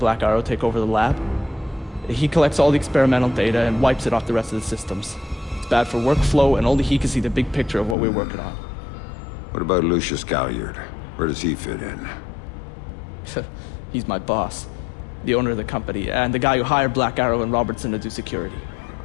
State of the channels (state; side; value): drops out; right; at 8.0 s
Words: Arrow take over the lab? He collects all the experimental data and wipes it off the rest of the systems. It's bad for workflow, and only he can see the big picture of what we're working on. What about Lucius Galliard? Where does he fit in? He's my boss, the owner of the company, and the guy who hired Black Arrow and Robertson to do security.